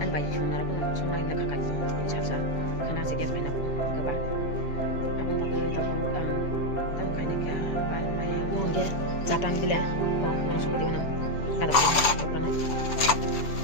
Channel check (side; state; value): right; late; 7.0 ms